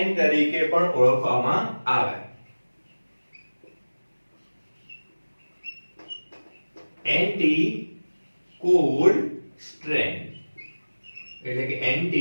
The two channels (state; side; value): inverted; both; correlation -1.00